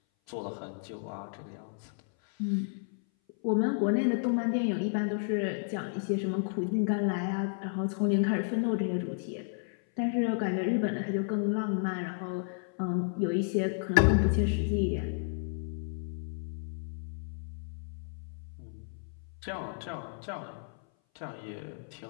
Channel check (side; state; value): right; silent; 56 dB below the other